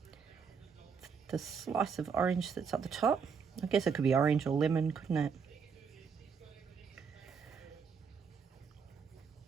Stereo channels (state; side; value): quieter; left; 6.1 dB